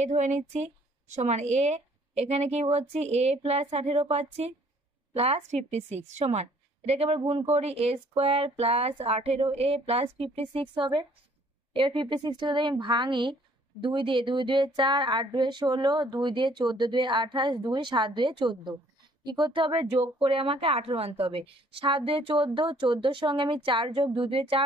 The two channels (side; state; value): both; normal; correlation 0.60